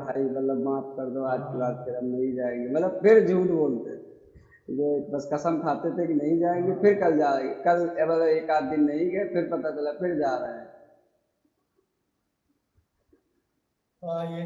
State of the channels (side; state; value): both; identical; correlation 1.00